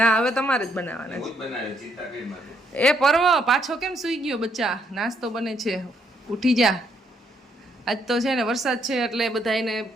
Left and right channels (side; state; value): both; normal; correlation 0.72